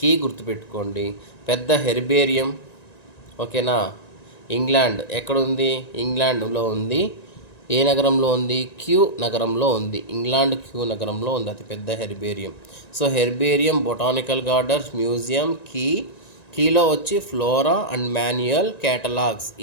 కీ గుర్తుపెట్టుకోండి, పెద్ద హెర్బేరియం. ఓకేనా. ఇంగ్లాండ్ ఎక్కడ ఉంది, ఇంగ్లాండ్లో ఉంది. ఏ నగరంలో ఉంది, క్యూ నగరంలో ఉంది. ఇంగ్లాండ్ క్యూ నగరంలో ఉంది అతిపెద్ద herbarium. So herbarium, botanical gardens, museum, కీలో వచ్చి ఫ్లోరా అండ్ మాన్యువల్ కేటలాగ్స్,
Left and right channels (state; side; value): late; right; 1.9 ms